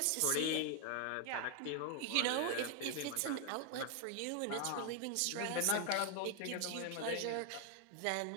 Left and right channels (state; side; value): different; both; correlation 0.00